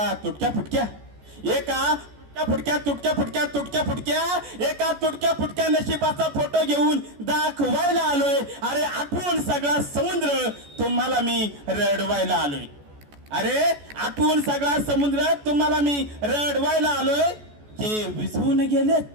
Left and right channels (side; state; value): left; late; 14 ms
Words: तुटक्या फुटक्या नशिबाचा फोटो घेऊन दाखवायला आलोय. अरे आठवून सगळा समुद्र तुम्हाला मी रडवायला आलोय. अरे आठवून सगळा समुद्र तुम्हाला मी रडवायला आलोय. जे विझवून गेलेत,